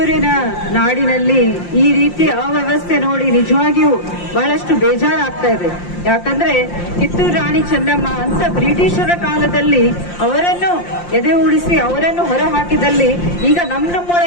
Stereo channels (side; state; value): right; late; 5.7 ms